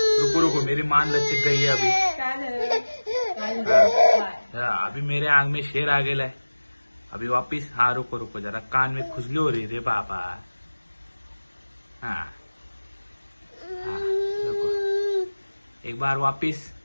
रुको रुको, मेरी मान लचक गई है अभी. काय झालं? अभी मेरे आंग में शेर आ गेला है. अभी वापिस. हाँ रुको रुको जरा, कान में खुजली हो रही रे बाबा. हाँ हाँ रुको, एक बार वापिस.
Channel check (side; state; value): both; inverted; correlation -1.00